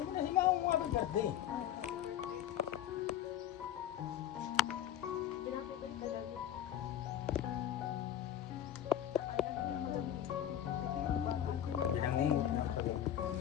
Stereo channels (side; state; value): right; quieter; 10.7 dB